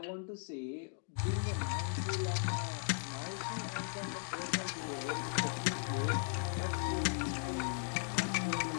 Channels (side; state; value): right; silent; 53 dB below the other